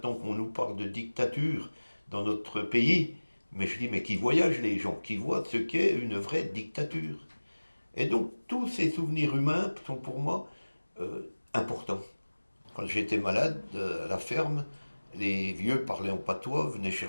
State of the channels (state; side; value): inverted; both; correlation -1.00